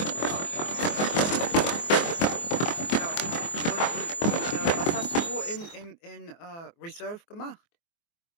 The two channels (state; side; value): late; right; 24 ms